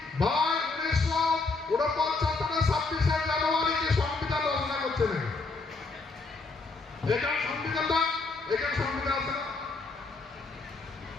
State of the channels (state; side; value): quieter; right; 3.9 dB